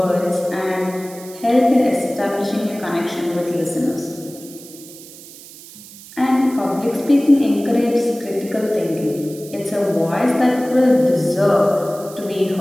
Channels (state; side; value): noise; right; hiss, 18 dB below the sound